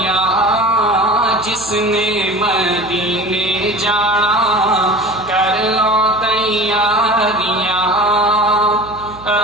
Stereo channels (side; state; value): right; noise; hum, 19 dB below the sound